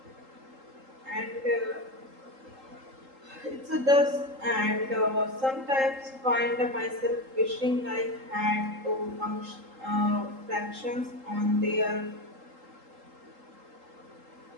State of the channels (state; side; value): late; left; 3.8 ms